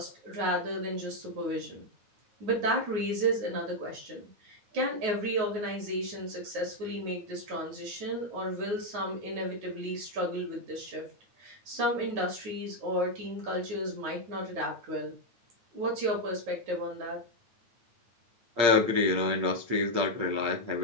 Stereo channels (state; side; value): late; left; 9.4 ms